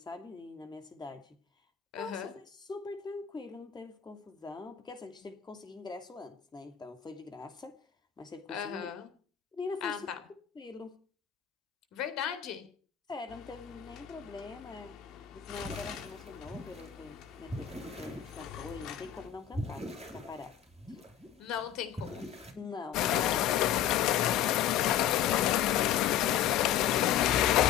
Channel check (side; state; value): right; quieter; 10.1 dB